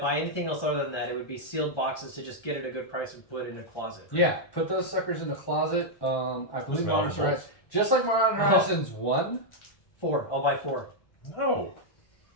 anything else other than that, it would be sealed boxes to just get it at a good price and put it in a closet. Yeah, put those suckers in the closet. I believe Modern Horizons, just like Modern Horizons 1. 4. I'll buy 4. No.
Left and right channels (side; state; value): right; late; 1.3 ms